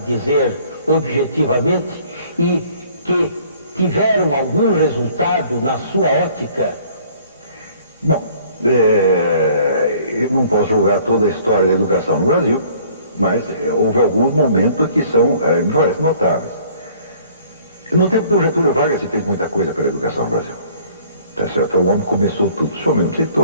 objetivamente, e que tiveram algum resultado na sua ótica? Bom, eu não posso julgar toda a história da educação no Brasil, mas houve alguns momentos que me parecem notáveis. No tempo do Getúlio Vargas se fez muita coisa pela educação no Brasil. Tá certo? O homem começou tudo. O senhor mesmo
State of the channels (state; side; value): inverted; both; correlation -0.56